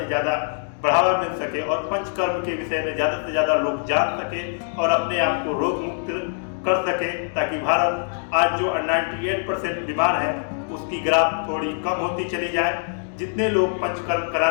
ज़्यादा बढ़ावा मिल सके और पंचकर्म के विषय में ज़्यादा से ज़्यादा लोग जान सके और अपने आप को रोग मुक्त कर सके, ताकि भारत आज जो 98% बीमार है उसकी ग्राफ थोड़ी कम होती चली जाए। जितने लोग पंचकर्म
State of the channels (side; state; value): right; silent; digital silence